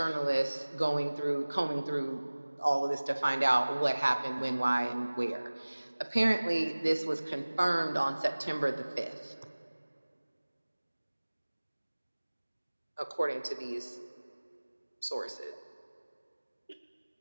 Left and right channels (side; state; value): both; inverted; correlation -1.00